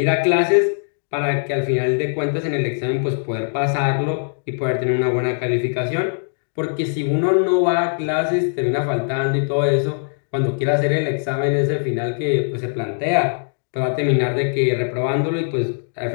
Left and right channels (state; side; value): silent; right; digital silence